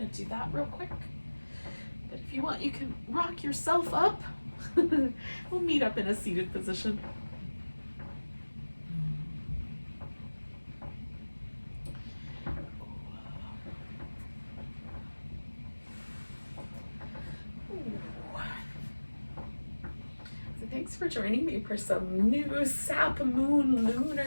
to do that real quick. But if you want, you can rock yourself up. We'll meet up in a seated position. Thanks for joining me for some new Sap Moon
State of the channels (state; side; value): inverted; both; correlation -1.00